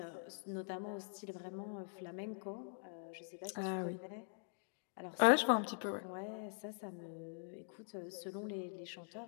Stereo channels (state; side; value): silent; right; digital silence